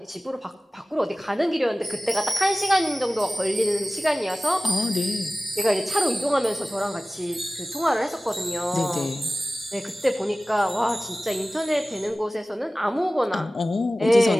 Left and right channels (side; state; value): both; normal; correlation 0.96